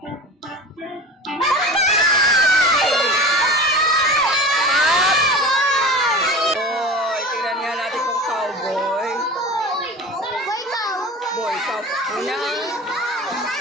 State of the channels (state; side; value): normal; both; correlation 0.34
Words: Boy, tingnan nga natin kung cowboy. Boy, cow. Una,